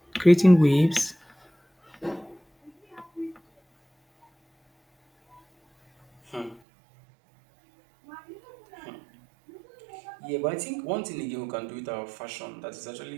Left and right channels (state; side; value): drops out; left; at 6.6 s